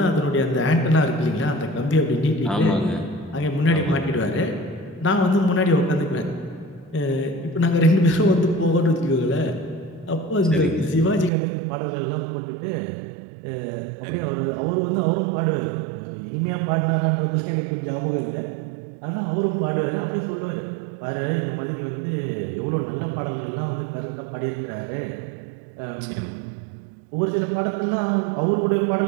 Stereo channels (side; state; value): left; drops out; at 11.3 s